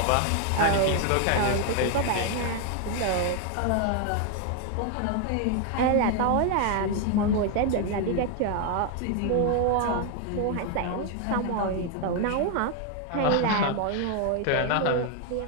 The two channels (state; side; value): different; both; correlation 0.00